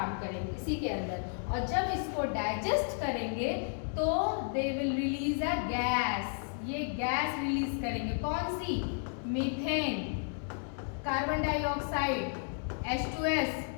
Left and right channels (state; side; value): silent; right; 56 dB below the other